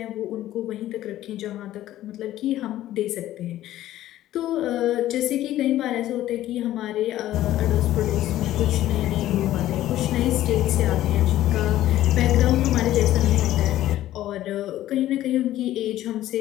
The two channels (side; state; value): right; quieter; 13.8 dB